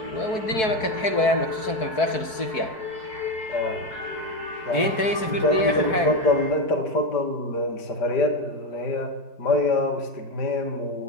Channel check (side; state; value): right; late; 4.6 ms